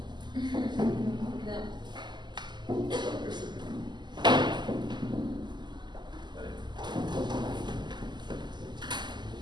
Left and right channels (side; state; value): left; late; 0.21 ms